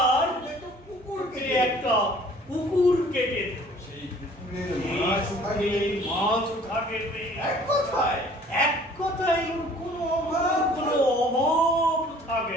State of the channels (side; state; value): both; normal; correlation 0.53